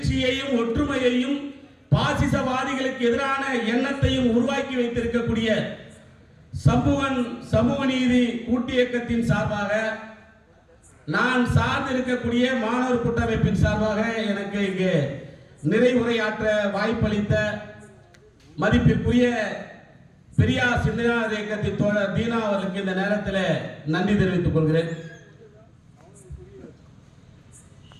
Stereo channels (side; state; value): both; identical; correlation 1.00